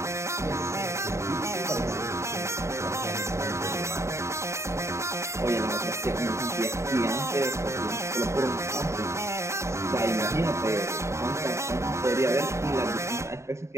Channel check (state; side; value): late; left; 0.14 ms